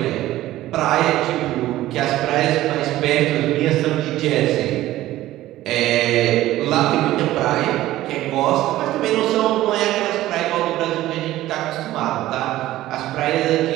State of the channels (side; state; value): left; quieter; 15.2 dB